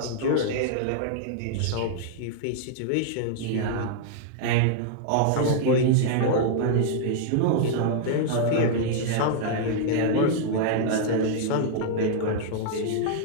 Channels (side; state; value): both; different; correlation -0.01